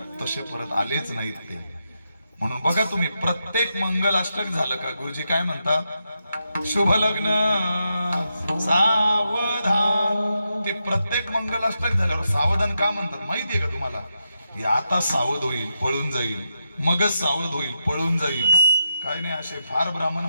तसे परत आलेच नाहीत ते. म्हणून बघा तुम्ही, प्रत्येक मंगलाष्टक झालं का गुरुजी काय म्हणतात? शुभ लग्न सावधान. ते प्रत्येक मंगलाष्टक झाल्यावर सावधान का म्हणतात माहितीये का तुम्हाला? हे आता सावध होईल, पळून जाईल, मगच सावध होईल, पळून जाईल. काय नाही, असे फार ब्राह्मण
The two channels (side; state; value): both; inverted; correlation -0.85